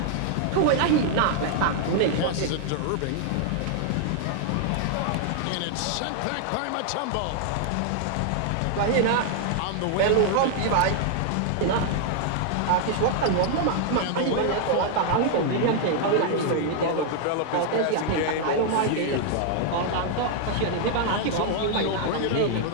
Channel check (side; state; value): both; different; correlation 0.00